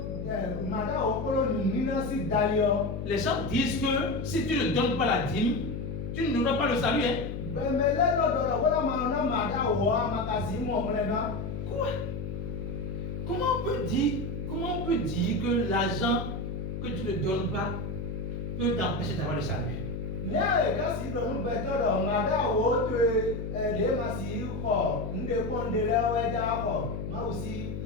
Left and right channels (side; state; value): left; noise; hum, 5 dB below the sound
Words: mada o kolo munina si dali yo les gens disent que si tu ne donnes pas la dîme, tu n'auras pas le salut. Hein? bemele no dodo wala ma na mada o amakasi mo mlega Quoi? Comment on peut dire que l'argent que tu ne donnes pas peut t'empêcher d'avoir le salut? ne ka si do nu beto do mada o to de ma si ko nde ko ndele we ja ko ma aussi